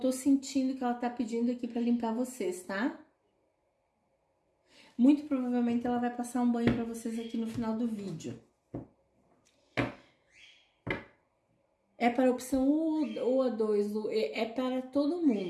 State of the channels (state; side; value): identical; both; correlation 1.00